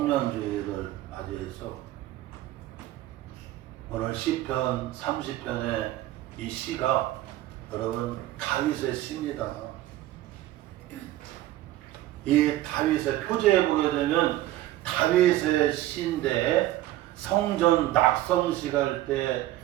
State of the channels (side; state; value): left; quieter; 15.1 dB